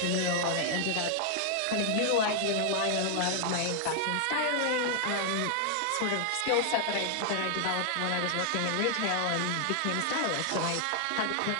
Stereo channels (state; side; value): different; both; correlation 0.00